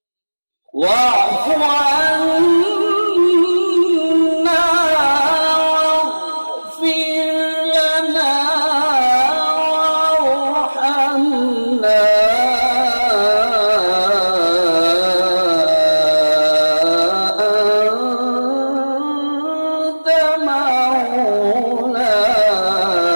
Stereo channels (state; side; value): inverted; both; correlation -1.00